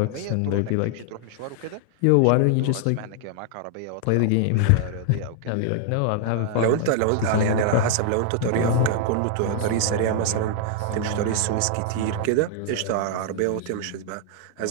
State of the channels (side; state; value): both; different; correlation 0.00